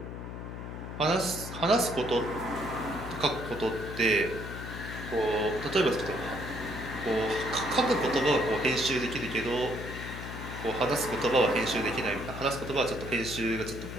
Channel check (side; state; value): left; noise; hum, 8 dB below the sound